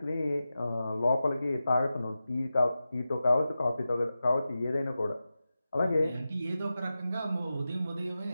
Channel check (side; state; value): both; inverted; correlation -0.92